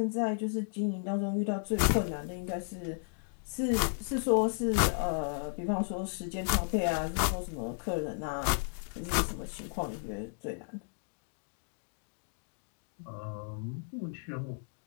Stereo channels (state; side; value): silent; right; digital silence